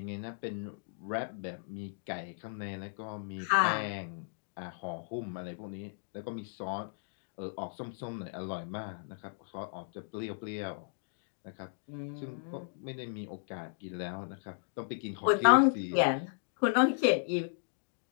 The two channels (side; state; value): right; silent; digital silence